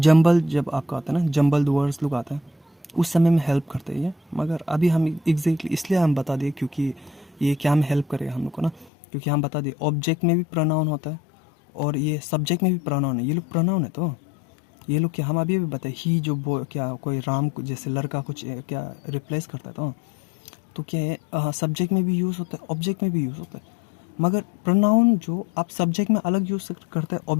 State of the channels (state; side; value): drops out; right; at 8.9 s